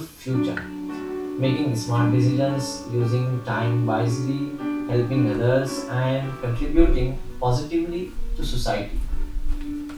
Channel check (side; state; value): both; identical; correlation 1.00